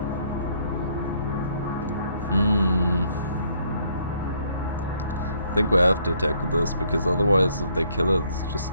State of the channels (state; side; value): inverted; both; correlation -0.67